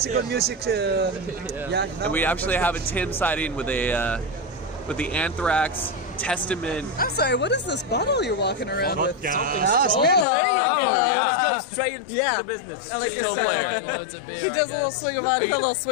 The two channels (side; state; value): right; drops out; at 10.2 s